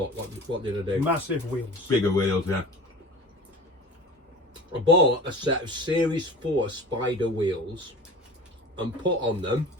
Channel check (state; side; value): normal; both; correlation 0.38